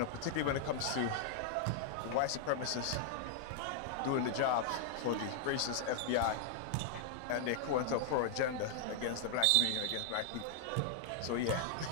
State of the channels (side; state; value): both; different; correlation -0.01